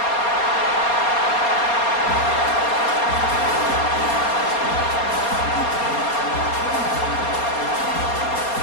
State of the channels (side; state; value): right; late; 4.3 ms